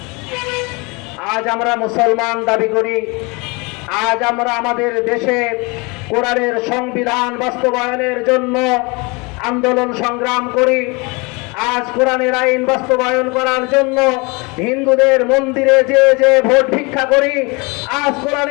আজ আমরা মুসলমান দাবি করি, আজ আমরা আমাদের দেশে কোরআনের সংবিধান বাস্তবায়নের জন্য আন্দোলন সংগ্রাম করি। আজ কোরআনের আইন বাস্তবায়ন করার জন্য হিন্দুদের মন্দিরে যে যে ভোট ভিক্ষা করি। আজ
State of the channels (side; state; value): right; quieter; 28.2 dB